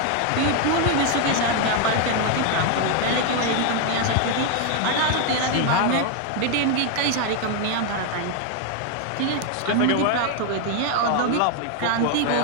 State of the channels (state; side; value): different; both; correlation 0.01